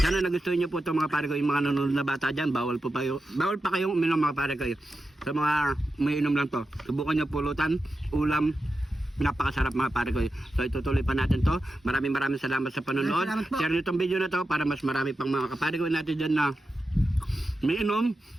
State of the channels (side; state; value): both; normal; correlation 0.90